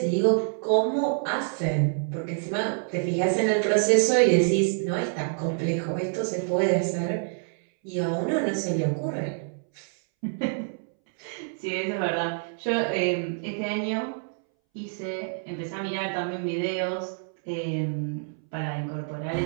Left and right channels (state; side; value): silent; left; 60 dB below the other